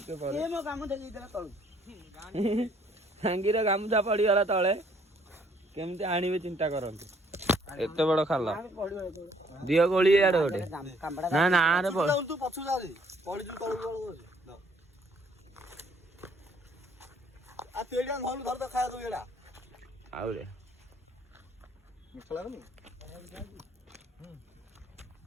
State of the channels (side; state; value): both; normal; correlation 0.63